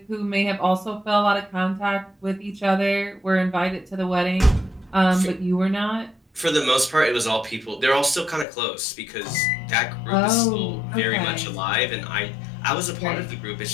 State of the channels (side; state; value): right; drops out; at 8.5 s